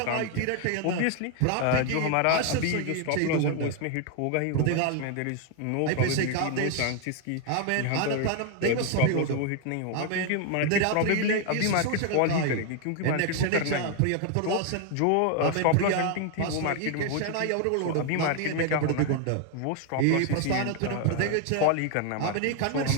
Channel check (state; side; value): different; both; correlation 0.00